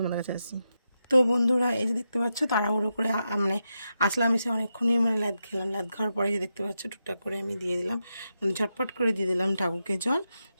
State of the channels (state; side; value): inverted; both; correlation -0.87